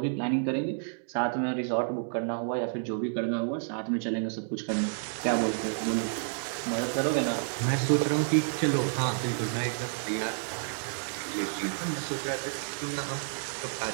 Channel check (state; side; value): silent; left; digital silence